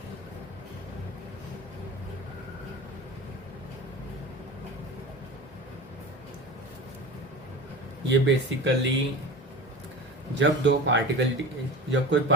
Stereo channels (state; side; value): normal; both; correlation 0.31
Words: ये बेसिकली जब कोई